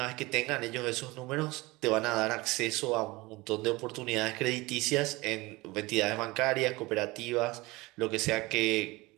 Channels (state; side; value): quieter; left; 22.2 dB